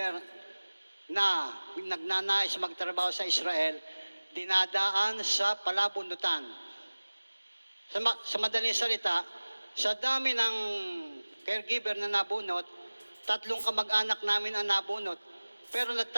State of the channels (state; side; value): inverted; both; correlation -1.00